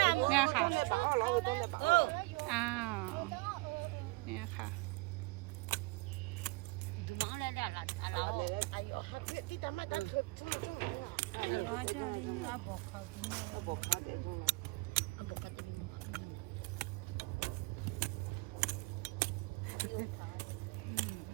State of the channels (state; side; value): quieter; left; 25.0 dB